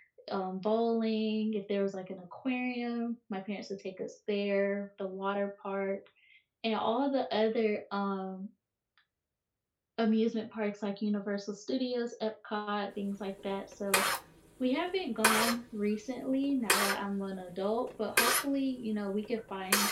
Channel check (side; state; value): both; identical; correlation 1.00